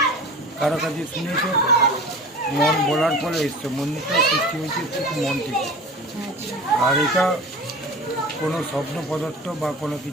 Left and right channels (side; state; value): both; normal; correlation 0.36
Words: কারো কাছে শুনেছো, মন বলার পরে এসছো। মন্দিরটা সৃষ্টি হয়েছে ঠিক মন থেকে। আর এটা কোনো স্বপ্ন পদার্থ বা কোনো